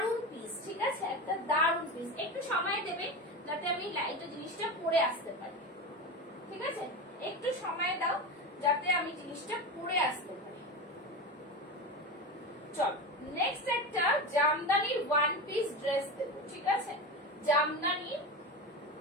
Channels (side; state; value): both; normal; correlation 0.23